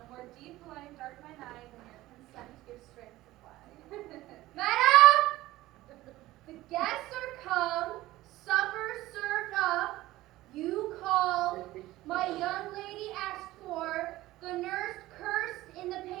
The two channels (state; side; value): quieter; left; 17.0 dB